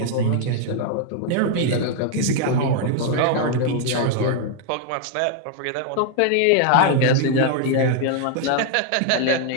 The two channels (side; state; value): both; different; correlation 0.00